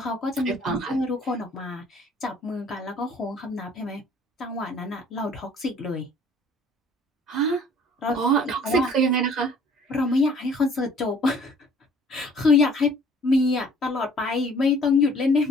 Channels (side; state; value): both; normal; correlation 0.55